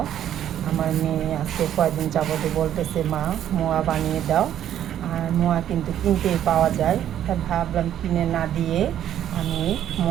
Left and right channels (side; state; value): left; quieter; 10.8 dB